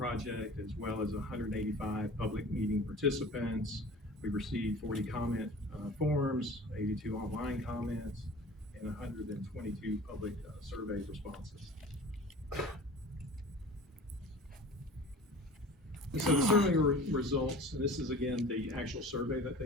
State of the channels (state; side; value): normal; both; correlation 0.41